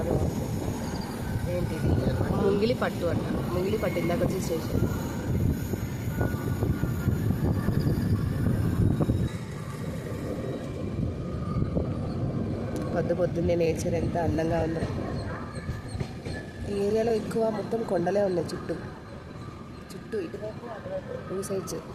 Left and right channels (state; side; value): identical; both; correlation 1.00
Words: బాగుంది. ఏంటిది ముంగిలి పట్టు అంట. ముంగిలి పట్టు ఇందాక వచ్చి స్టేషన్. పొద్దున్నే నేచర్ ఎంత అందంగా ఉందో. ఈ ఏరియాలో ఎక్కువ మొత్తం కొండలే ఉన్నాయి చుట్టూ ఇటువైపు అటువైపు 2 సైడ్స్.